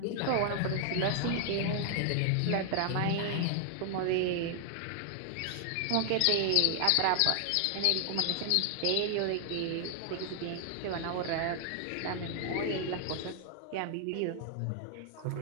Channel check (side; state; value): both; different; correlation 0.00